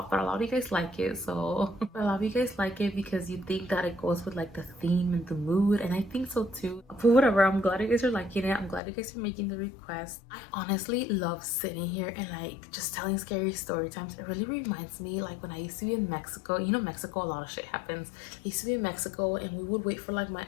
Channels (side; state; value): right; drops out; at 8.8 s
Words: but a lot of you guys like it. So a lot of you guys like it because you think that it goes with like the theme and the mood, and I think so too. But whatever, I'm glad you guys are liking it. I'm glad you guys are making the request. I honestly love sitting here and like just telling scary story times. It really reminds me like when I used to be in Mexico. You know, Mexico, a lot of shit happens. I used to be in Mexico and we would wait for like my